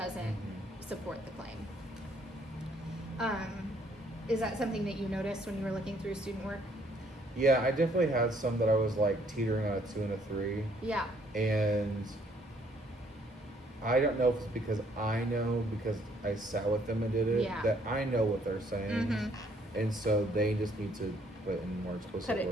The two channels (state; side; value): normal; both; correlation 0.65